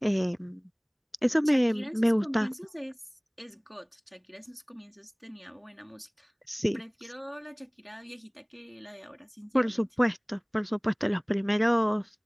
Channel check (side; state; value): both; identical; correlation 1.00